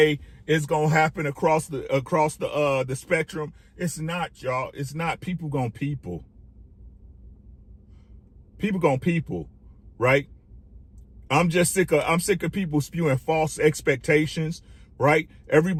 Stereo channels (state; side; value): identical; both; correlation 1.00